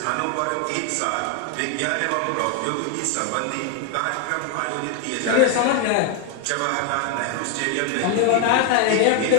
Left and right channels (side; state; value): both; different; correlation 0.01